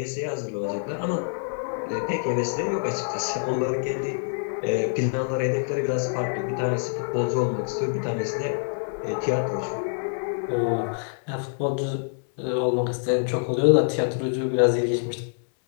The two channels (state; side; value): silent; right; 59 dB below the other